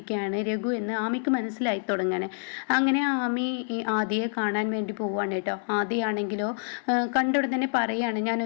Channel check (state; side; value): silent; right; 60 dB below the other